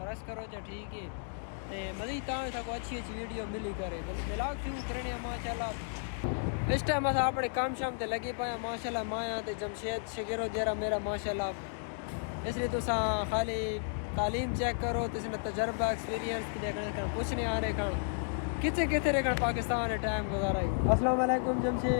کرو چاہو ٹھیک ہے تے مزید تاں تک اچھی ویڈیو ملی کرے ولاگ شروع کرنے ہیں ماشاءاللہ اس ٹائم اصل اپنے کام شام تے لگے پایا ماشاءاللہ مایا تے جمشید شگیرو جیرا میرا ماشاءاللہ اس لیے تو خالی تعلیم چیک کرو تو اس نے تجربہ ایکسپیرینس دیکھنے کچھ نہیں آ رہے کھان کتنے رہے پاکستان ہے ٹائم گزارا السلام علیکم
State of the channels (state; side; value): silent; right; digital silence